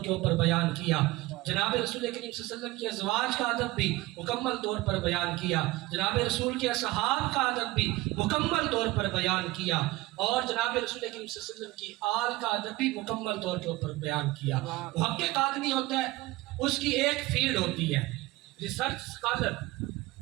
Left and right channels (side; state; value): left; quieter; 19.4 dB